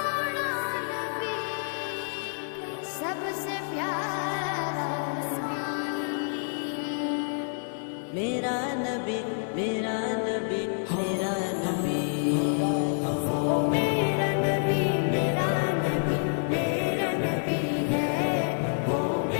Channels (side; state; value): right; silent; digital silence